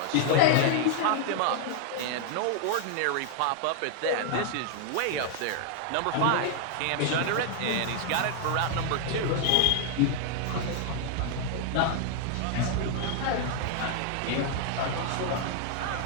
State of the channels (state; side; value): different; both; correlation 0.00